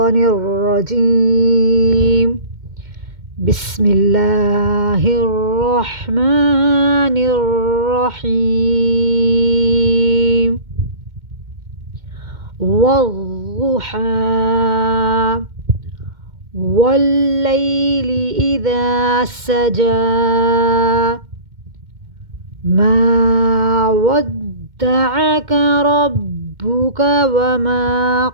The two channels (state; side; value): late; left; 2.1 ms